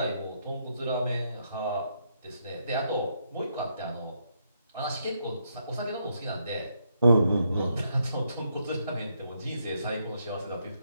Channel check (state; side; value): inverted; both; correlation -0.77